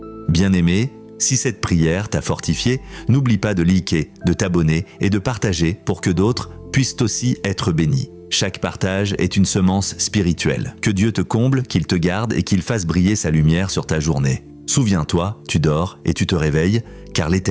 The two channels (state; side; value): identical; both; correlation 1.00